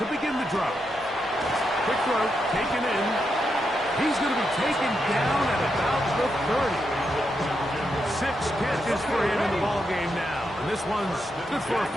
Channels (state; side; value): normal; both; correlation 0.83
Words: begin the drive. Quick throw, taken in. He's going to be taken down at about the 30. 6 catches for him in the ball game now. And this one's good for a